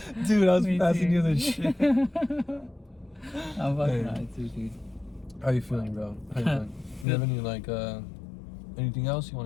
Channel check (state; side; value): drops out; right; at 7.1 s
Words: Dude, I was Me passing too. you the shit. I'm fucking Hey. high too, dude. How you feeling, bro? How you feeling? You have any like anything else you